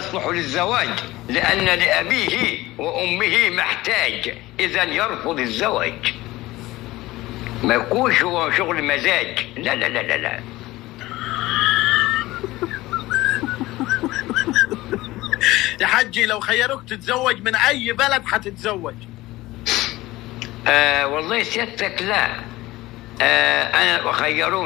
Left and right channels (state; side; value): quieter; right; 18.3 dB